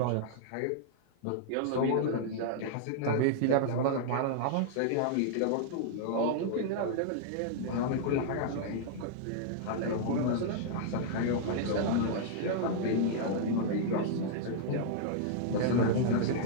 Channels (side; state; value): both; different; correlation -0.01